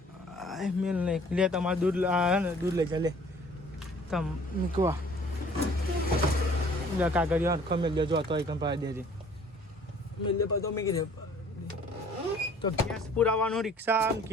મેલ નહીં લે તમારે દૂધ ને દૂધ લઈ જા લે તમ મૂકવા કાગળિયા હરખો મેલ દેજો હતો એક પાડી દેજે મેલ દે તો મેં કીધે તો ગેસ પુરાવાનું રિક્ષા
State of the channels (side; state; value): both; normal; correlation 0.54